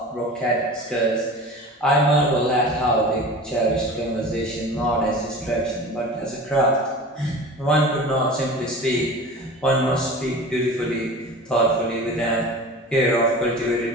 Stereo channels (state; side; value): normal; both; correlation 0.36